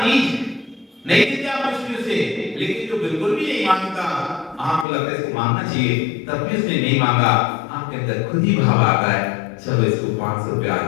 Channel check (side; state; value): right; drops out; at 4.9 s